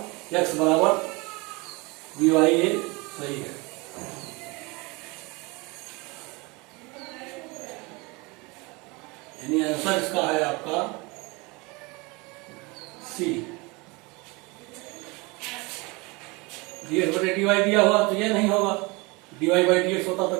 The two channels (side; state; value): left; quieter; 26.2 dB